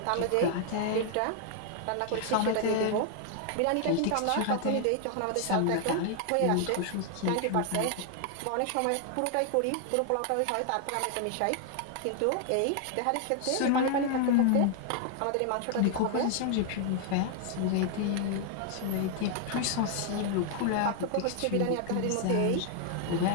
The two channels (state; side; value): different; both; correlation 0.00